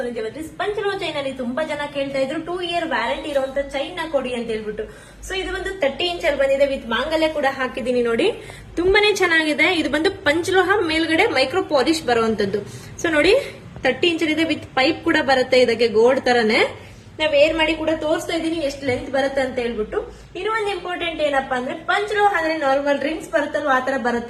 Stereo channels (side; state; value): both; identical; correlation 1.00